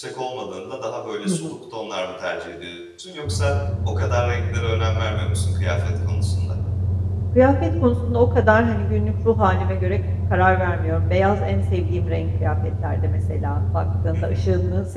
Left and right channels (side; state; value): both; identical; correlation 1.00